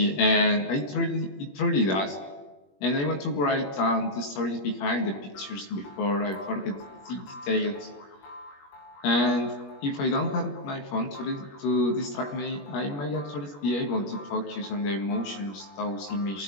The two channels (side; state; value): right; late; 21 ms